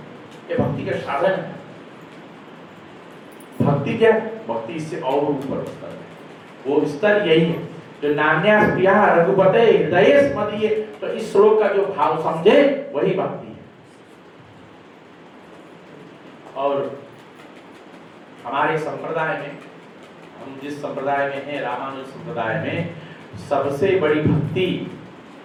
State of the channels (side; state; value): both; identical; correlation 1.00